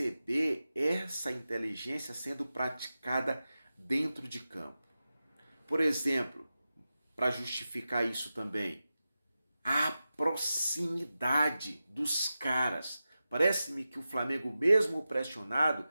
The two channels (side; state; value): both; inverted; correlation -0.93